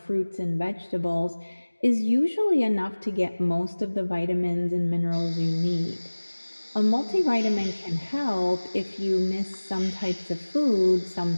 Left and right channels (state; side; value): inverted; both; correlation -1.00